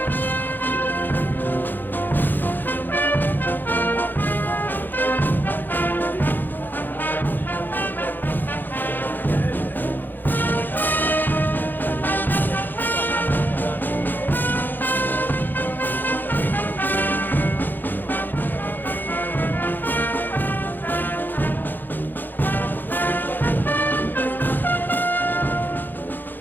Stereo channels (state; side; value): late; right; 0.089 ms